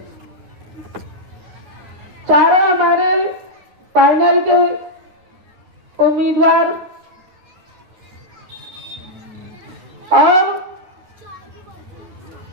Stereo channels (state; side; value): late; left; 9.7 ms